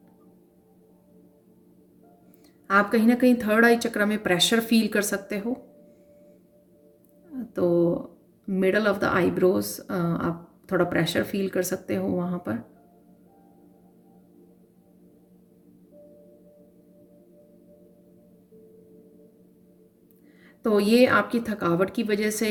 आप कहीं ना कहीं थर्ड आई चक्र में प्रेशर फील कर सकते हो, तो मिडल ऑफ द आईब्रोज आप थोड़ा प्रेशर फील कर सकते हो वहाँ पर। तो ये आपकी थकावट की वजह से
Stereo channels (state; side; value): identical; both; correlation 1.00